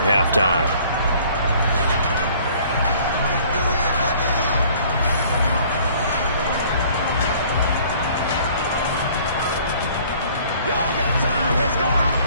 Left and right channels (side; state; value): both; inverted; correlation -0.54